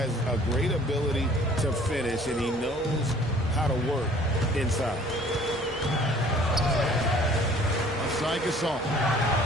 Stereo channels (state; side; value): normal; both; correlation 0.54